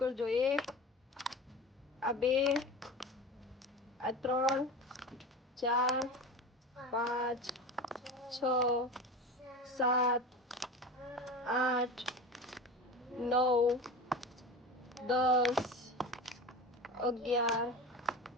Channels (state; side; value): normal; both; correlation 0.31